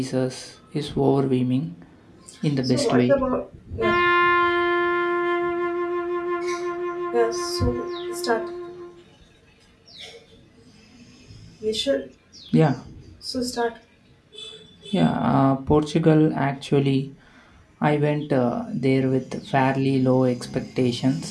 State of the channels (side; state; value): both; identical; correlation 1.00